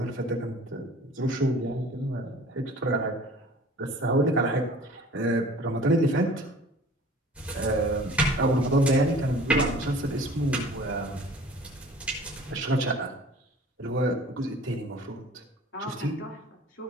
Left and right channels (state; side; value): normal; both; correlation 0.47